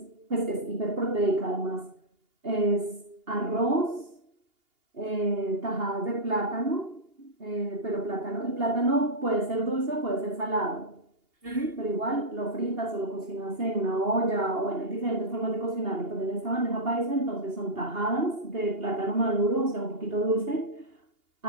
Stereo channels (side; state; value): left; late; 2.8 ms